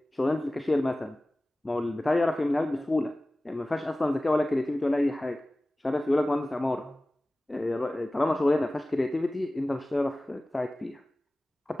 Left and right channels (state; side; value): normal; both; correlation 0.97